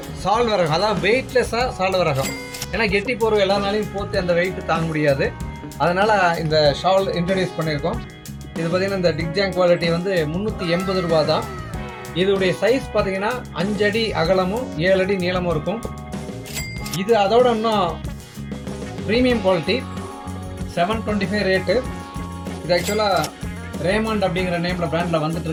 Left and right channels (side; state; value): both; identical; correlation 1.00